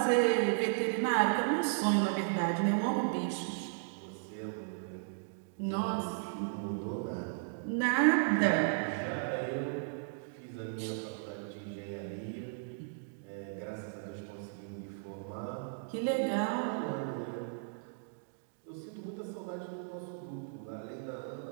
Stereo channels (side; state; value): left; silent; digital silence